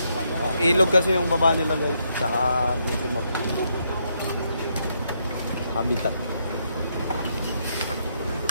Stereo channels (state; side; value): inverted; both; correlation -0.77